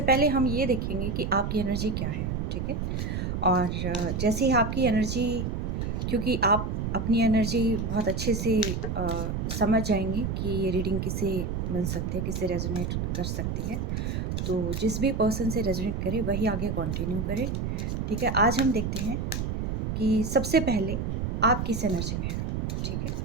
पहले हम ये देखेंगे कि आपकी एनर्जी क्या है। ठीक है, और जैसे ही आपकी एनर्जी, क्योंकि आप अपनी एनर्जी बहुत अच्छे से समझ जाएंगे कि ये रीडिंग किसे मिल सकती है, किसे रेजोनेट कर सकती है। तो जिस भी पर्सन से रेजोनेट करे वही आगे कंटिन्यू करे। ठीक है, आज हम देखते हैं कि सबसे पहले आप किस एनर्जी में हैं। ठीक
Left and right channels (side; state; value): right; noise; rumble, 2 dB below the sound